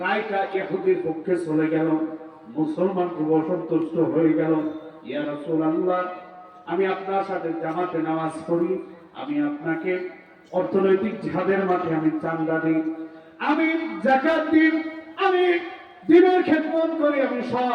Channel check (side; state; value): both; identical; correlation 1.00